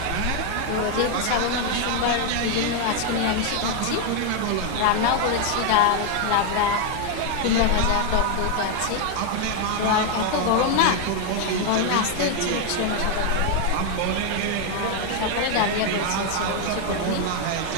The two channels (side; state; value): both; different; correlation 0.01